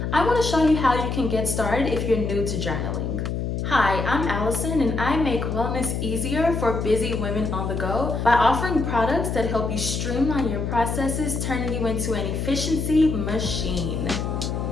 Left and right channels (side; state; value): left; noise; hum, 2 dB below the sound